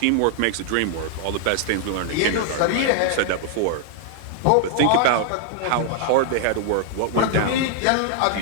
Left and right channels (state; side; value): different; both; correlation 0.00